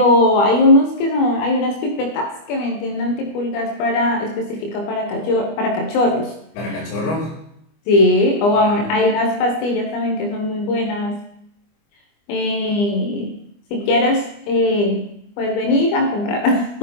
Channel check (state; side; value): late; right; 25 ms